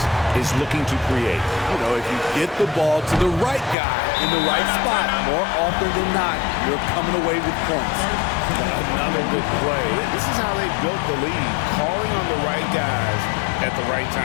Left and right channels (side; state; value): right; drops out; at 3.8 s